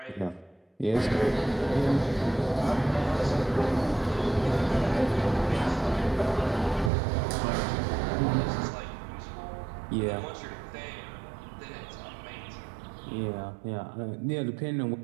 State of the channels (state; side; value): drops out; left; at 6.9 s